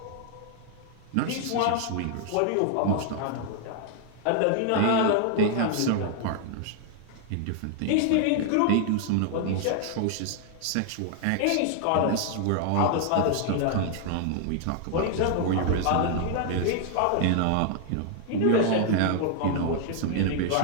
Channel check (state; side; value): different; both; correlation 0.00